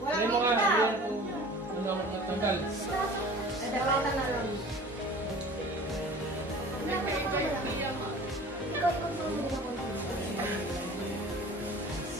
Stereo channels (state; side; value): normal; both; correlation 0.43